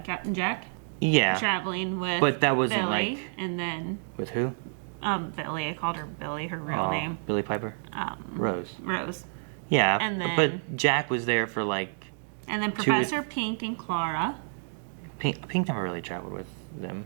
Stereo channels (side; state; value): left; silent; digital silence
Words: Captain Jack Yeah. traveling with But that wasn't, Billy, like- and then With who? Billy. I called her Billy, her real Oh, name. Billy Piper? Rose. Rose. Yeah, And then- but Jack was there for, like, And then 2 Professor Pink and Clara. Pink never really traveled with them.